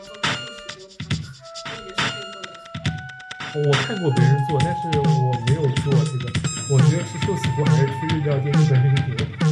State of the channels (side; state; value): both; identical; correlation 1.00